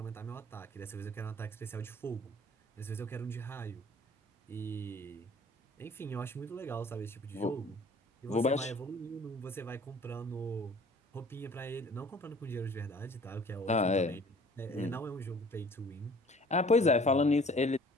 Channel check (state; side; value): normal; both; correlation 0.51